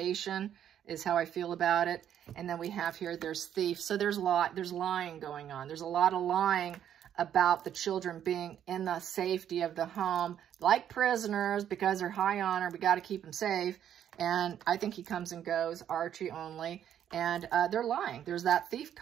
is how I feel about it. And then we have here, there's thief. So there's lying going on. There's a lot of lying about the children being in the safety of the home, like prisoners, because they're high honor. We got to keep them safe. And I think he comes and goes, Archie only. And they're lying. There's that thief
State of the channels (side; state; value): left; quieter; 9.9 dB